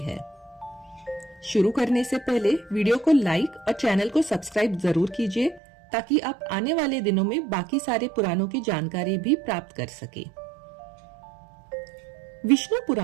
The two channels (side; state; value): left; drops out; at 5.6 s